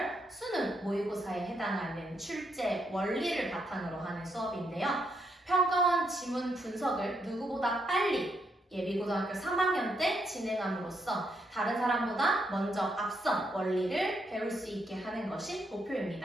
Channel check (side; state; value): both; normal; correlation 0.77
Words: 수능 모의고사에 해당하는 출제 원리를 바탕으로 하는 수업인데요. 평가원 지문 분석을 누구보다 빨리 예비고등학교 3학년 때 진행함으로써 다른 사람보다 먼저 앞선 원리를 배울 수 있게 하는 것이